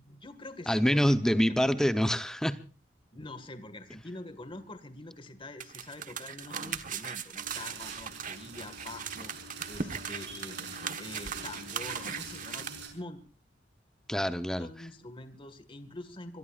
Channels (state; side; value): normal; both; correlation 0.82